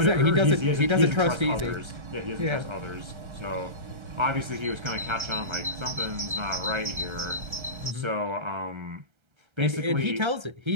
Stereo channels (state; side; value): late; left; 1.3 ms